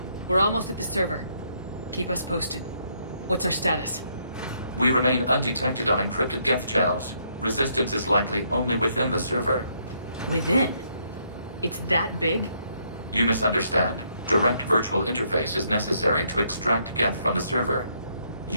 We're almost at the server. Keep us posted. What's our status? We remain undetected on encrypted Geth channels. Resistance is likely only within the server. Within? It's that big? You misunderstand. Direct virtual interface is necessary to extract Geth from the server.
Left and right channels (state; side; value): inverted; both; correlation -0.72